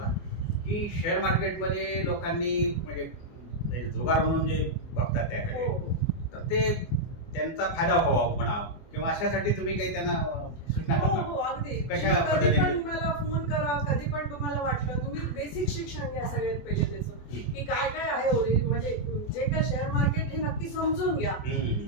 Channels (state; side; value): late; right; 24 ms